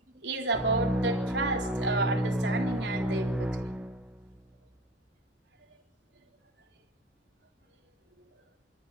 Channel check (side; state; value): both; normal; correlation 0.35